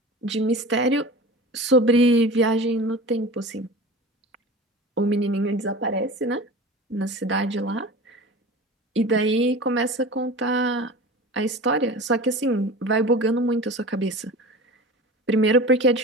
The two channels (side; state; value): both; normal; correlation 0.35